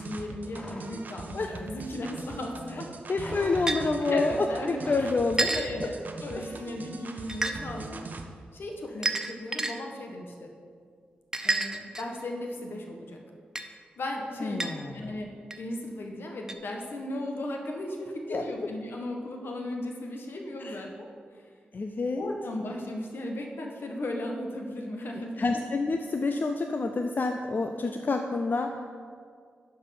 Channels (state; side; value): normal; both; correlation 0.83